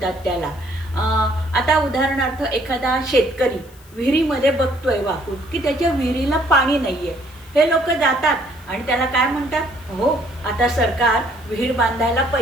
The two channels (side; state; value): left; noise; hiss, 26 dB below the sound